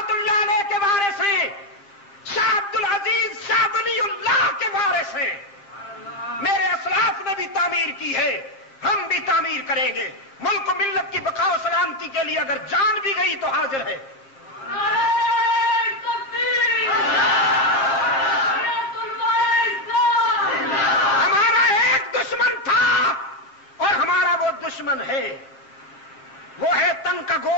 اللہ علیہ کے وارث ہیں، شاہ عبد العزیز شاہ ولی اللہ کے وارث ہیں۔ میرے اسلاف نے بھی تعمیر کی ہے، ہم بھی تعمیر کریں گے۔ ملک و ملت کی بقا و سلامتی کے لیے اگر جان بھی گئی تو حاضر ہے۔ ہمارا ایک دشمن تھا اور ہمارا وہ دشمن ہے، وہ ہے تن کا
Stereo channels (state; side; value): late; right; 7.5 ms